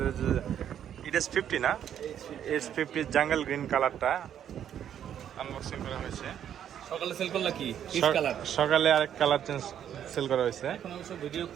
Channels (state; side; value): quieter; left; 9.7 dB